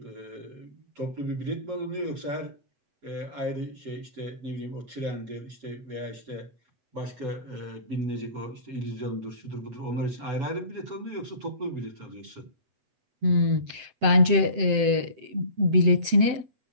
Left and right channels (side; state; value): left; late; 7.7 ms